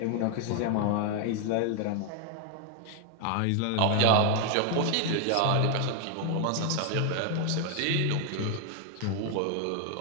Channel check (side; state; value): both; different; correlation 0.00